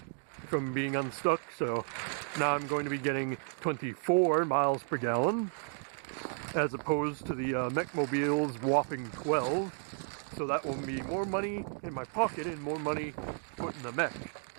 from being unstuck, so now I'm going to be getting 24 miles per gallon as opposed to the Meckmobile's whopping 12. So that will be more money in my pocket and more money put in the mech.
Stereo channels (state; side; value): silent; left; 56 dB below the other